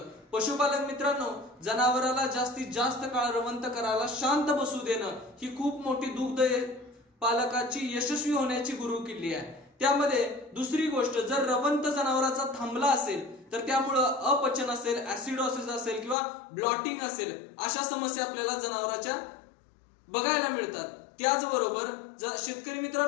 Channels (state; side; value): drops out; right; at 16.2 s